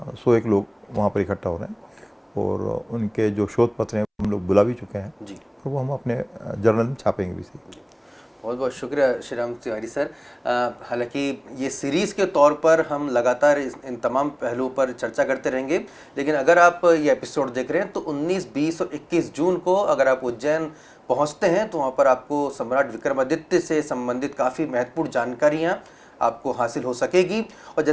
101 लोग वहाँ पर इकट्ठा हो रहे हैं, और उनके जो शोध पत्र हैं हम लोग बुला भी चुके हैं, और वो हम अपने जर्नल में छापेंगे भी। बहुत बहुत शुक्रिया श्री राम तिवारी सर। हालांकि ये सीरीज़ के तौर पर हम लगातार इन तमाम पहलुओं पर चर्चा करते रहेंगे, लेकिन अगर आप ये एपिसोड देख रहे हैं तो 19, 20 और 21 जून को अगर आप उज्जैन पहुंचते हैं तो वहां पर आपको सम्राट विक्रमादित्य से संबंधित काफ़ी महत्वपूर्ण जानकारियाँ आपको हासिल हो सकेगी। और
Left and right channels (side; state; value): both; identical; correlation 1.00